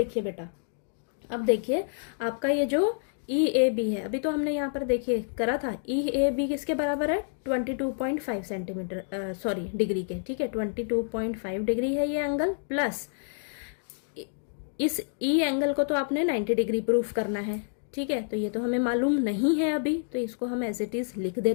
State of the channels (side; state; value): right; silent; digital silence